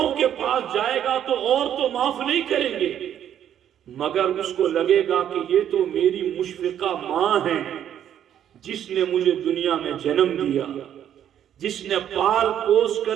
کے پاس جائے گا تو اور تو معاف نہیں کریں گے مگر اس کو لگے گا کہ یہ تو میری مشفقہ ماں ہے جس نے مجھے دنیا میں جنم دیا، جس نے پال پوس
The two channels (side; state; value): left; quieter; 10.1 dB